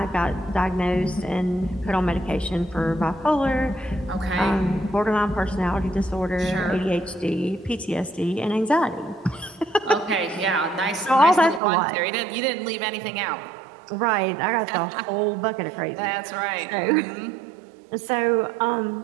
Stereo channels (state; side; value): drops out; left; at 11.6 s